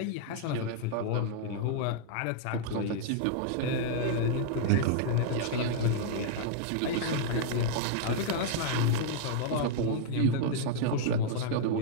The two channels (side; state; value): both; different; correlation -0.01